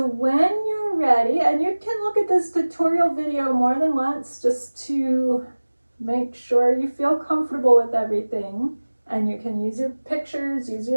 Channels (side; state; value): both; inverted; correlation -1.00